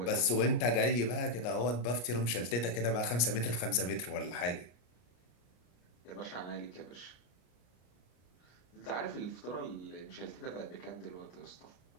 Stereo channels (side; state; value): right; late; 33 ms